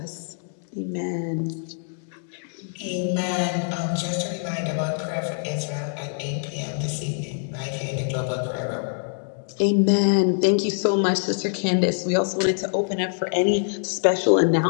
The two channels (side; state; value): right; silent; digital silence